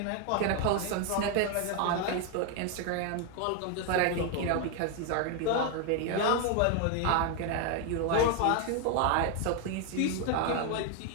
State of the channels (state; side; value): different; both; correlation 0.01